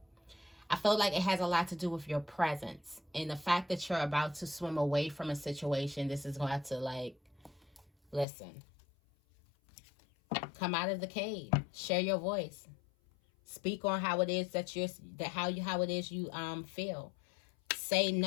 I feel like it has a lot to do with your presence. And the fact that you're about to swim away from a situation, this is going to have to, like, listen. Come out of the cave. Share your voice. Speak on how it is that how it is you feel. Say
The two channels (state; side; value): drops out; right; at 8.2 s